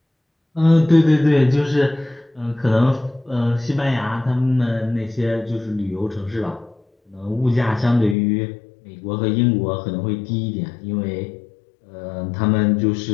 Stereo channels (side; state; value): right; drops out; at 8.2 s